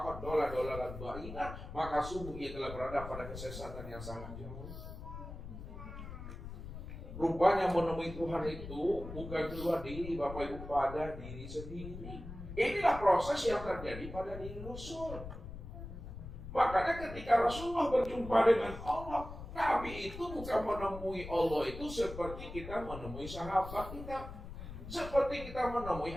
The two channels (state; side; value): noise; left; rumble, 10 dB below the sound